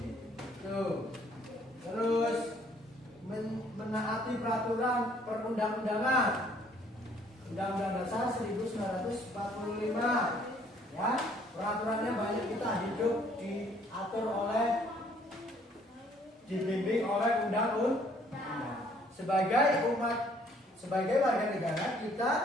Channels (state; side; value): normal; both; correlation 0.62